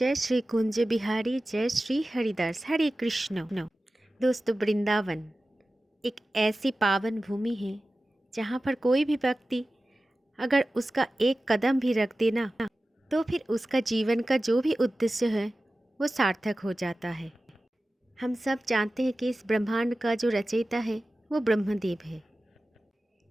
श्री कुंज बिहारी, जय श्री हरिदास, हरे कृष्ण। दोस्तों, वृंदावन एक ऐसी पावन भूमि है जहाँ पर कोई भी व्यक्ति अगर उसका एक कदम भी रख देना तो फिर उसका जीवन का जो भी उद्देश्य है वो सार्थक हो जाता है। हम सब जानते हैं कि इस ब्रह्मांड का जो रचयिता है वो ब्रह्मदेव है,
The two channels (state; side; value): normal; both; correlation 0.95